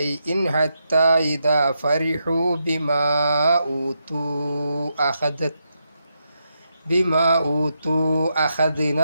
حتى إذا فرحوا بما أوتوا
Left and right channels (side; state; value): both; inverted; correlation -0.83